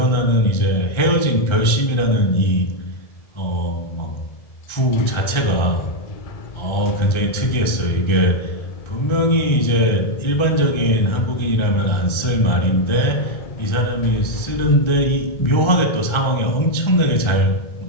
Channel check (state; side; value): late; right; 1.3 ms